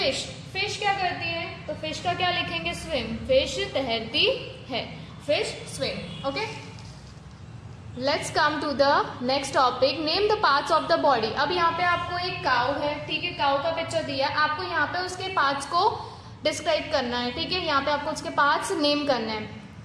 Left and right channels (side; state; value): both; identical; correlation 1.00